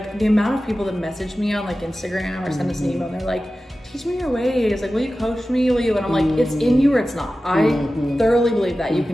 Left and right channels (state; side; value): normal; both; correlation 0.95